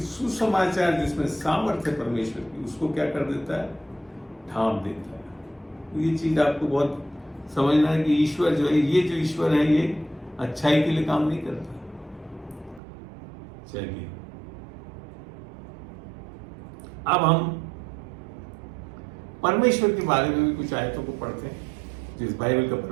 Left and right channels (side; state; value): left; drops out; at 12.8 s